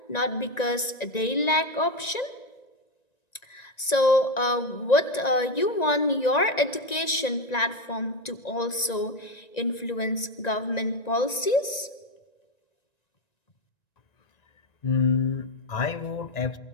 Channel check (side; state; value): right; late; 1.9 ms